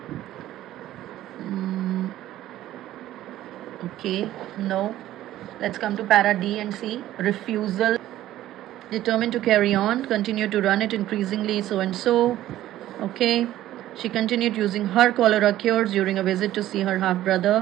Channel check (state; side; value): quieter; left; 13.8 dB